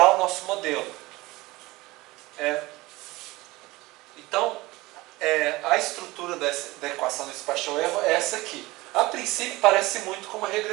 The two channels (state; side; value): quieter; left; 20.6 dB